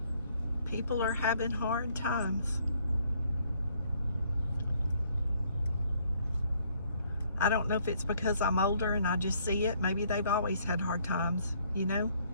People are having hard times. I don't know if it's because I'm older and I just see it. Maybe they've always had hard times, you know?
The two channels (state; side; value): inverted; both; correlation -0.65